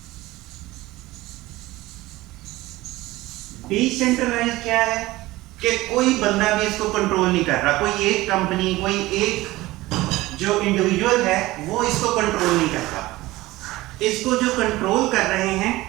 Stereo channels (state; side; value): quieter; left; 18.6 dB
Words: डिसेंट्रलाइज्ड क्या है? कि कोई बंदा भी इसको कंट्रोल नहीं कर रहा, कोई एक कंपनी, कोई एक जो इंडिविजुअल है वो इसको कंट्रोल नहीं करता। इसको जो कंट्रोल कर रहे हैं